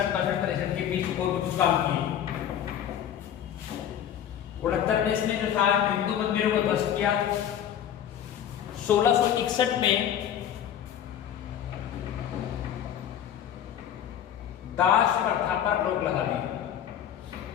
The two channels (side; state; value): right; quieter; 9.9 dB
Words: 63 के बीच और कुछ काम किए। 69 में इसने जो था हिंदू मंदिरों को ध्वस्त किया। 1661 में दास प्रथा पर रोक लगा दी।